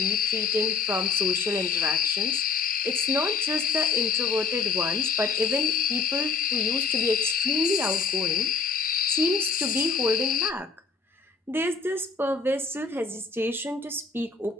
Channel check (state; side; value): quieter; right; 4.9 dB